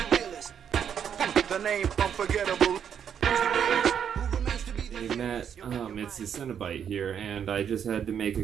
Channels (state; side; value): quieter; left; 8.3 dB